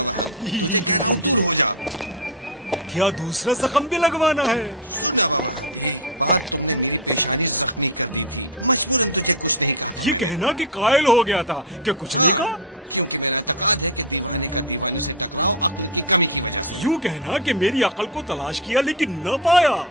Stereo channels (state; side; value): normal; both; correlation 0.06